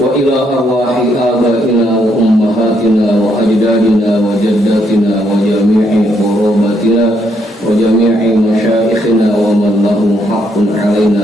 ila arwahi abaina wa ummahatina wa ajdadina wa jaddatina wa jami'i qurabatina wa jami'i masyayikhina wa man lahum haqqun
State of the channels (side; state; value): both; normal; correlation 0.74